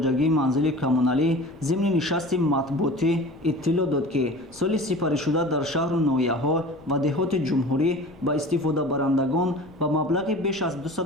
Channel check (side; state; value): left; noise; rumble, 26 dB below the sound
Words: манзили коммуналӣ зимни нишасти матбуотӣ иттилоъ дод ки соли сипаришуда дар шаҳру ноҳияҳо ва деҳоти ҷумҳурӣ ба истифодабарандагон ба маблағи беш аз